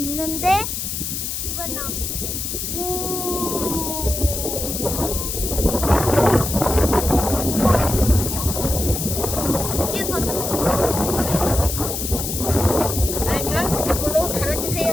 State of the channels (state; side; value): noise; left; hiss, 4 dB below the sound